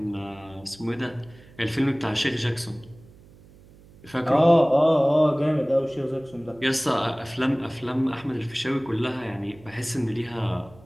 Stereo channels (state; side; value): noise; right; hum, 24 dB below the sound